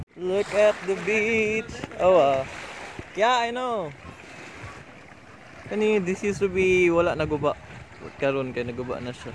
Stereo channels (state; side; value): identical; both; correlation 1.00